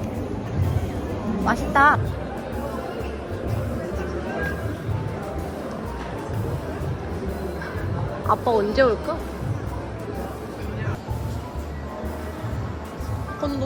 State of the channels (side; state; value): both; identical; correlation 1.00